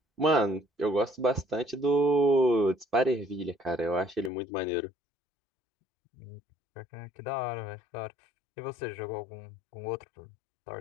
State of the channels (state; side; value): drops out; right; at 4.3 s